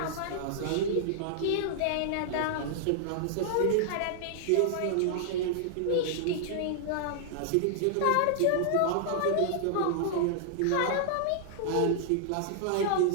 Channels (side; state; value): both; different; correlation -0.01